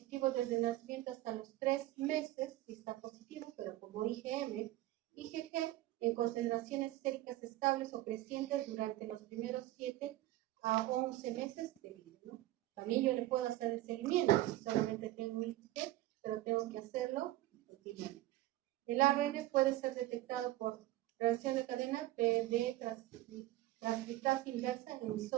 desde el nacimiento hasta los 3 meses, si está positivo, pero como IgM, IgG en concentraciones séricas estables o crecientes durante los primeros 7 a 11 meses de vida, ¿no? También yo le puedo hacer el seguimiento, si solamente tengo un IgG, pero tengo que hacerlo continuamente. El ARN puede ser detectado por reacción de cadena de transcriptasa inversa en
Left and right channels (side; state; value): left; quieter; 16.3 dB